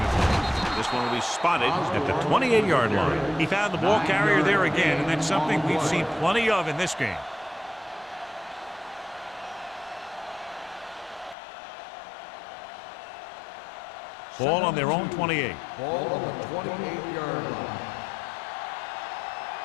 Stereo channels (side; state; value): right; drops out; at 11.4 s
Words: home. This one will be spotted at the 28-yard line. He found the ball carrier there again, and that's something we've seen plenty of in this game. Ball on their own 28. Ball on the 28-yard line.